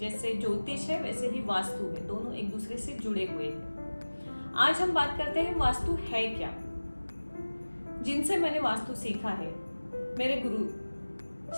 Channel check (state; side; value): inverted; both; correlation -1.00